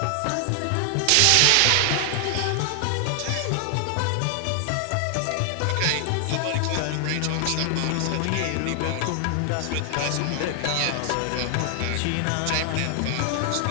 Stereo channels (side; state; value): both; different; correlation 0.00